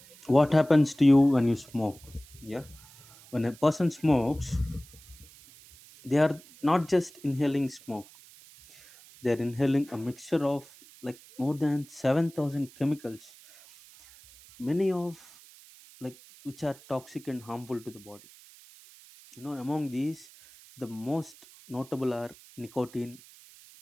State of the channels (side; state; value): right; noise; hiss, 22 dB below the sound